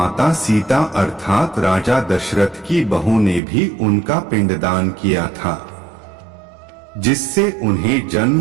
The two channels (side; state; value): left; drops out; at 3.4 s